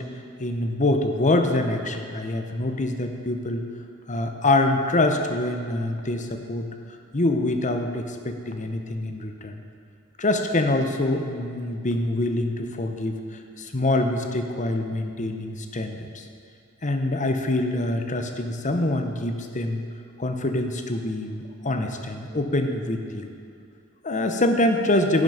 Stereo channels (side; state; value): both; normal; correlation 0.46